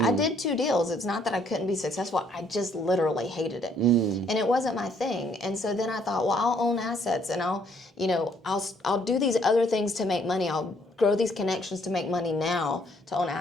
did 2 deals. It's not that I couldn't be successful. I just literally hated it. And it wasn't my thing. And so then I thought, well, I'll own assets, and I'll do these other things to make money. I'll grow these connections to make money now to own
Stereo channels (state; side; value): normal; both; correlation 0.66